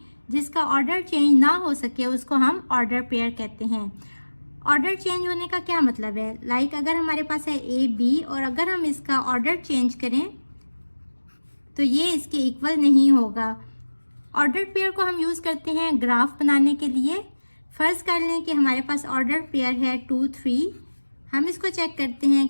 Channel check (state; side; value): inverted; both; correlation -1.00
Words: जिसका ऑर्डर चेंज ना हो सके उसको हम ऑर्डर पेयर कहते हैं। ऑर्डर चेंज होने का क्या मतलब है? लाइक अगर हमारे पास है ए बी और अगर हम इसका ऑर्डर चेंज करें तो ये इसके इक्वल नहीं होगा। ऑर्डर पेयर को हम यूज़ करते हैं ग्राफ बनाने के लिए। फर्ज कर लें कि हमारे पास ऑर्डर पेयर है 2 3। हम इसको चेक करते हैं